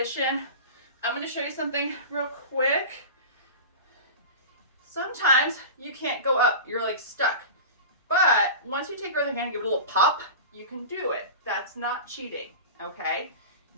I'm going to show you something real quick. Sometimes you can't go up. You're like stuck. But once you take your other hand and give it a little pop, you can do it. That's not cheating, okay?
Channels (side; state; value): both; inverted; correlation -0.31